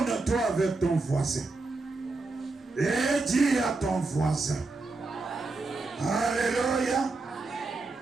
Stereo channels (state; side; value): quieter; left; 3.5 dB